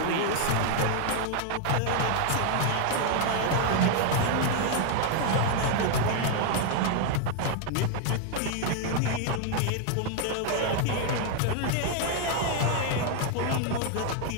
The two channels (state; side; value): different; both; correlation 0.00